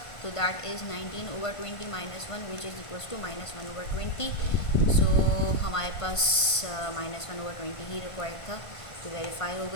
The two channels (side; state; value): right; late; 1.5 ms